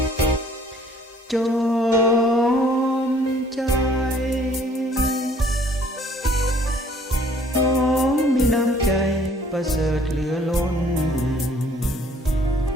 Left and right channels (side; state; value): both; normal; correlation 0.58